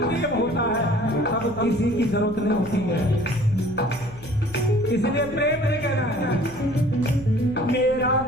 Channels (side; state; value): left; noise; hum, 19 dB below the sound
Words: होता है, तब किसी की जरूरत नहीं होती है। इसलिए प्रेम नहीं कहना है, मेरा